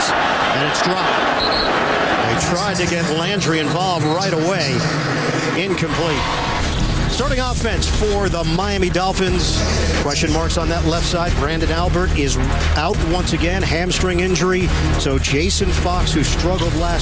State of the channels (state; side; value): identical; both; correlation 1.00